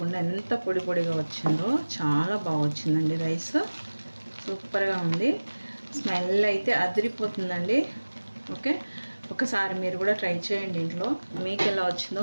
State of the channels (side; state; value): both; inverted; correlation -1.00